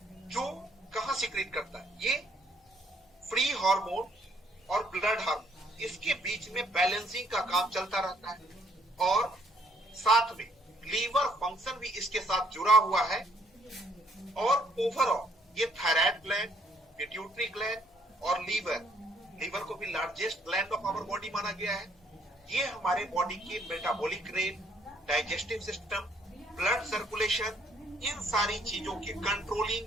जो कहां सिक्रीट करता है, ये फ्री हार्मोन और ब्लड हार्मोन, इसके बीच में बैलेंसिंग का काम चलता रहता है। और साथ में लीवर फंक्शन भी इसके साथ जुड़ा हुआ है। और ओवरऑल ये थायराइड ग्लैंड, पिट्यूटरी ग्लैंड और लीवर को भी largest gland of our body माना गया है। ये हमारे बॉडी की metabolic rate, digestive system, blood circulation, इन सारी चीजों के कंट्रोलिंग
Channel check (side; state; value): both; normal; correlation 0.65